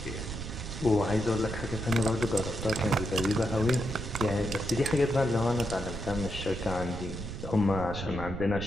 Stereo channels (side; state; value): right; noise; rumble, 7 dB below the sound